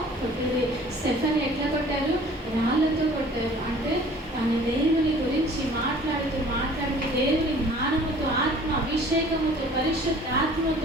కొట్టారు. స్టెఫెన్ ఎట్లా కొట్టారు? రాళ్లతో కొట్టారు. అంటే తన దేవుని గురించి మాట్లాడుతూ దేవుని జ్ఞానముతో, ఆత్మ అభిషేకముతో, పరిశుద్ధ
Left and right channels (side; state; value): both; normal; correlation 0.50